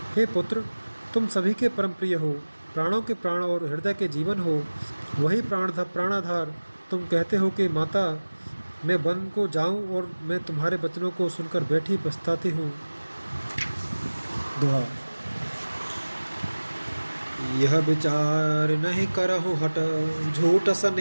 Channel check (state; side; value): inverted; both; correlation -1.00